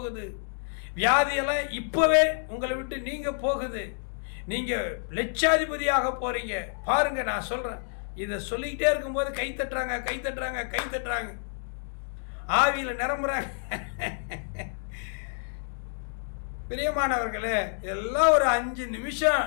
வியாதியெல்லாம் இப்போவே உங்களை விட்டு நீங்க போகுது. நீங்கள் லட்சாதிபதியாக போகிறீங்க. பாருங்க, நான் சொல்கிறேன், இதை சொல்லிக்கிட்டே இருக்கும்போது கை தட்டுறாங்க, கை தட்டுறாங்க, கை தட்டுறாங்க, ஆவியில் நிரம்புறாங்க. பிரியமானவர்களே, எல்லாம் ஒரு 5 நிமிஷம்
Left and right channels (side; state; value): right; silent; digital silence